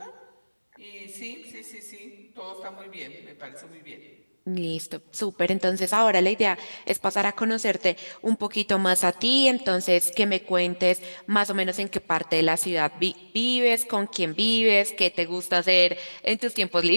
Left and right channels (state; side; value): inverted; both; correlation -1.00